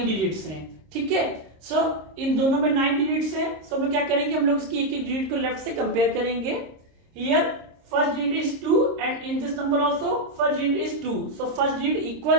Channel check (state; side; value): late; left; 26 ms